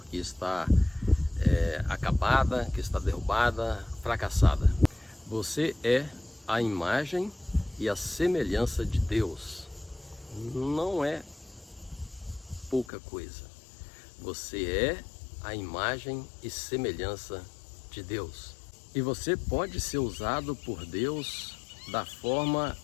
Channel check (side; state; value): right; drops out; at 12.9 s